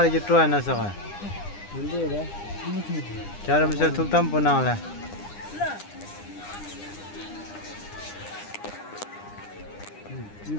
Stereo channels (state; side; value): late; right; 9.8 ms